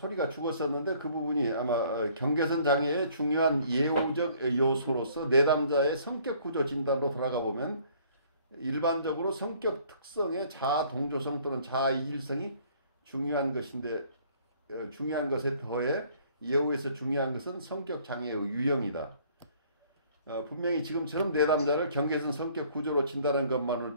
죽었었는데 그 부분이 아마 경계선 장애의 중요한 예후적 요소로서 내담자의 성격 구조 진단으로 돌아가 보면 일반적으로 성격 특성의 자아 동조성 또는 자아 이질성이 중요한 것인데 중요한 것에 더해 예후에서 중요한 것은 성격 장애의 유형이다. 분명히 지금처럼 내담자를 경계선 성격 구조로 진단하는 것만으로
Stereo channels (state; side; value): inverted; both; correlation -0.58